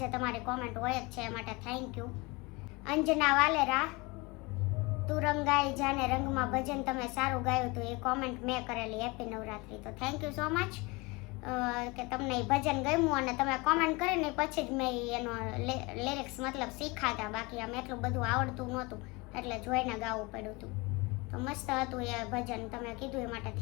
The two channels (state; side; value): quieter; right; 25.5 dB